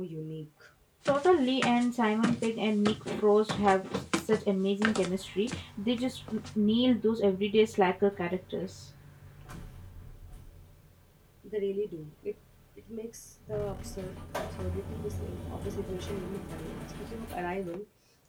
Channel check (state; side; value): identical; both; correlation 1.00